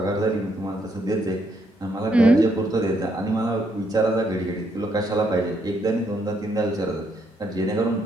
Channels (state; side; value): normal; both; correlation 0.74